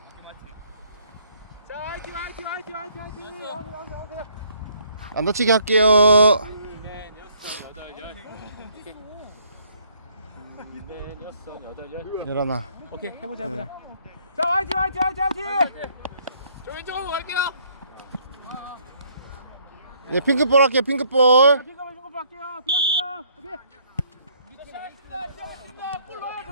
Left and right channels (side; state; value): both; inverted; correlation -0.65